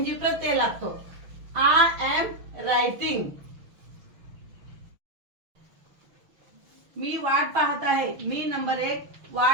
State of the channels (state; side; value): late; left; 6.2 ms